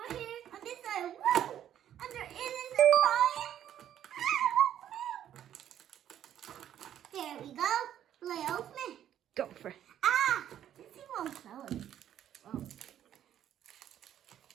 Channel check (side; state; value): left; quieter; 10.7 dB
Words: here. On this side, woo! And there is a surprise. There we go. Will I open it? Go for it. Ah! This thing won't close. Oh.